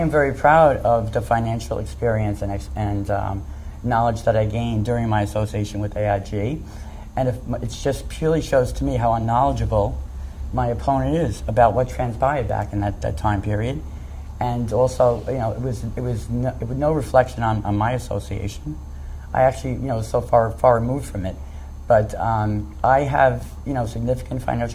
very proud of the financial experience and knowledge that I gained during my association with AIG. And it just purely shows to me how unknowledgeable my opponent is about what transpired back in that time period. And also, it was no reflection on my association. I actually, so far removed from it. But I have, significant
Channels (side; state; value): both; identical; correlation 1.00